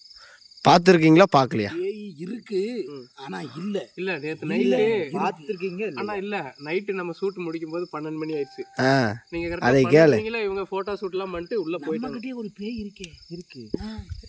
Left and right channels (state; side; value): identical; both; correlation 1.00